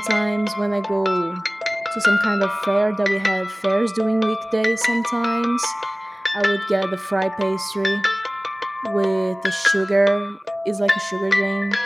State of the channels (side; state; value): both; normal; correlation 0.98